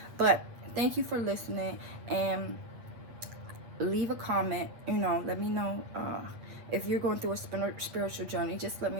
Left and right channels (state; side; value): late; left; 8.5 ms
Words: But thank you for listening, and leave a comment. You know, let me know if you're going through a spiritual journey. Just let me